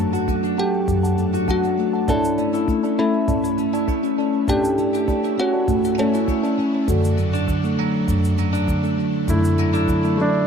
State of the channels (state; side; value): normal; both; correlation 0.62